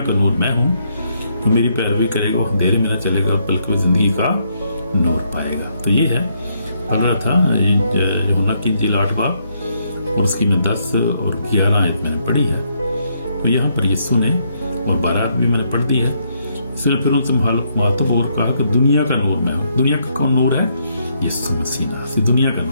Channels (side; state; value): both; inverted; correlation -0.74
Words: کا نور میں ہوں, تو میری پیروی کرے گا وہ اندھیرے میں نہ چلے گا بلکہ وہ زندگی کا نور پائے گا. تو یہ ہے پڑھ رہا تھا یوحنا کی انجیل 8 باب اور اس کی میں 10 اور 11 آیت میں نے پڑھی ہے. تو یہاں پر یسوع نے اور 12 بھی میں نے پڑھ دی ہے. اس نے پھر ان سے مخاطب اور کہا کہ دنیا کا نور میں ہوں. دنیا کا کون نور ہے؟ یسوع مسیح. دنیا کا